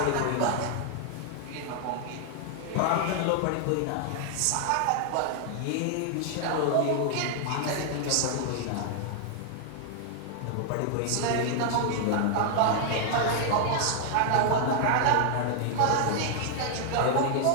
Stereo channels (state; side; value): different; both; correlation 0.00